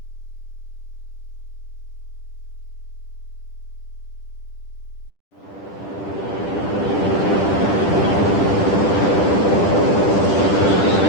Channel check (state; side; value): late; right; 10 ms